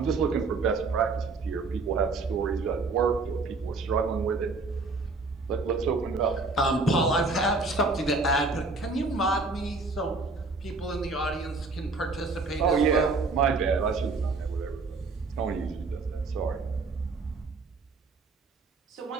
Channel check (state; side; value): quieter; left; 3.8 dB